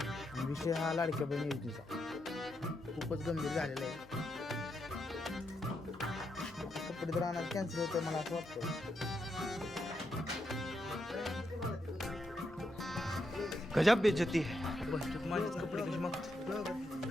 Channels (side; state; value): left; noise; hum, 22 dB below the sound